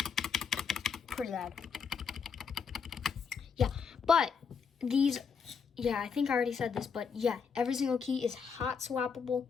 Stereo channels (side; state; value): right; quieter; 6.0 dB